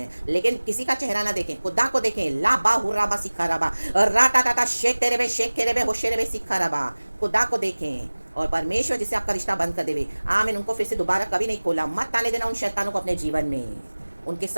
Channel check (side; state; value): both; inverted; correlation -1.00